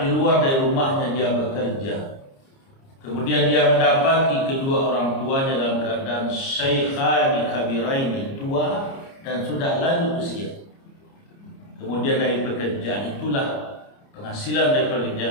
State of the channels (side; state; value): right; late; 30 ms